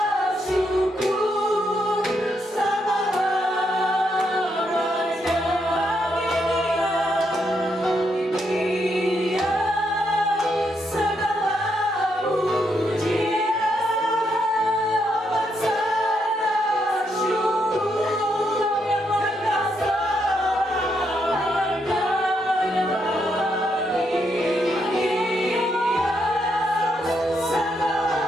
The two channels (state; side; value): normal; both; correlation 0.78